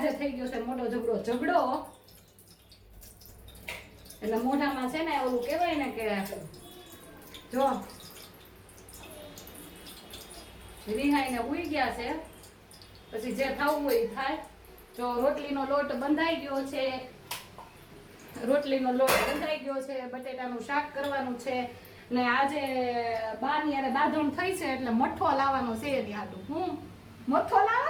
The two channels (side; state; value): both; identical; correlation 1.00